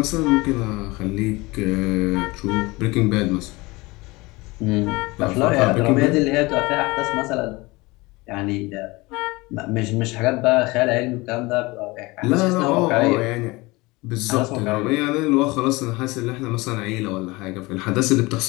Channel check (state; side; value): quieter; right; 22.8 dB